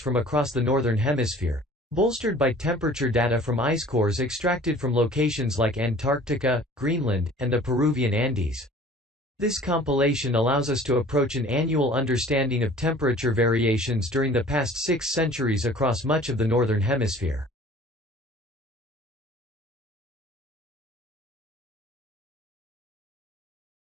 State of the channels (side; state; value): both; normal; correlation 0.48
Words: across the Northern Hemisphere, bolstered by temperature data from ice cores extracted from locations like Antarctica, Greenland, and the Peruvian Andes. This compilation allows us to approach an annual understanding of temperature variations during the past 6 centuries across much of the Northern Hemisphere.